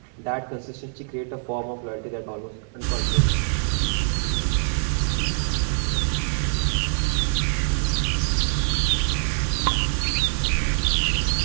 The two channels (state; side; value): silent; left; digital silence